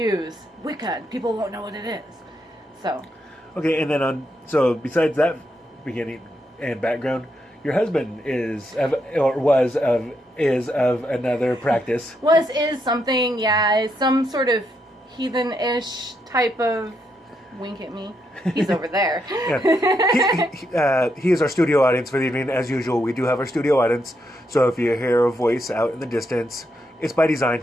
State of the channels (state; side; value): normal; both; correlation 0.79